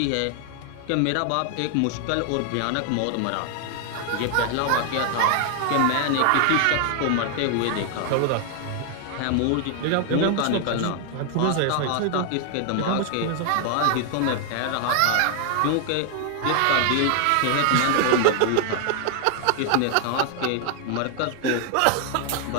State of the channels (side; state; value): both; different; correlation 0.00